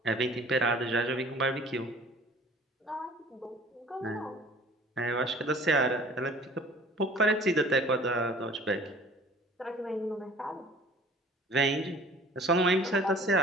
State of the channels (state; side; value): normal; both; correlation 0.48